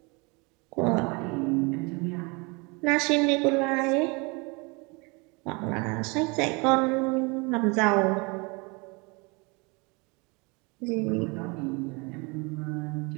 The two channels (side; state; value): left; quieter; 28.8 dB